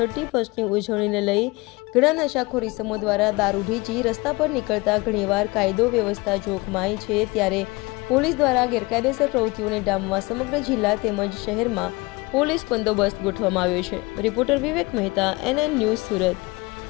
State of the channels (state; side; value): quieter; right; 23.9 dB